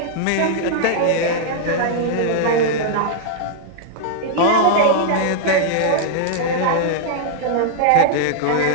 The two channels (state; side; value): different; both; correlation -0.01